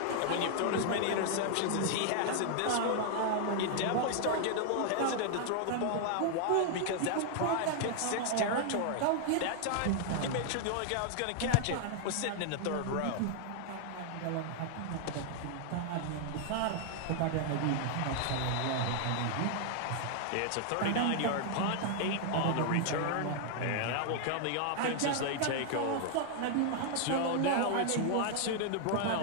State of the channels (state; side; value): different; both; correlation 0.00